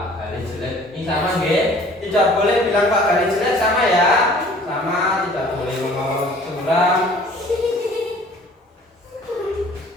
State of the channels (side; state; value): both; normal; correlation 0.51